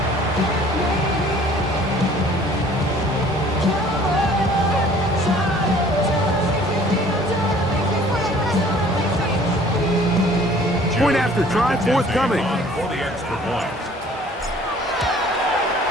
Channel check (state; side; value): normal; both; correlation 0.53